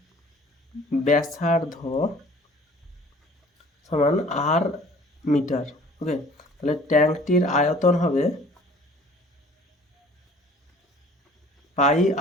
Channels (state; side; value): normal; both; correlation 0.50